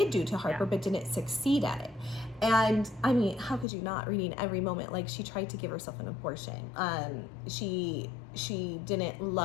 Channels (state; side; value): drops out; right; at 3.7 s